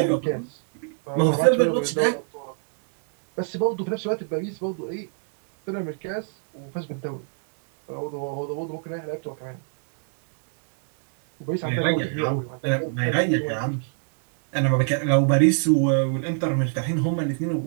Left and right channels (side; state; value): left; silent; digital silence